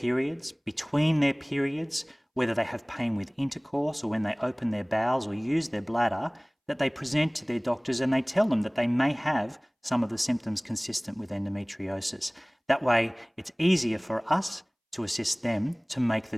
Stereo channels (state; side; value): identical; both; correlation 1.00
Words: between their periods, whether they have pain with intercourse or when they open their bowels or use their bladder, that they present to their doctors and they tell them that they may have some of the symptoms consistent with endometriosis. That way, it's easier for us to assist them to make